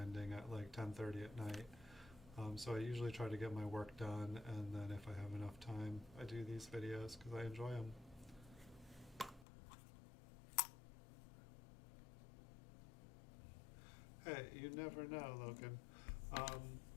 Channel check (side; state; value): right; drops out; at 9.5 s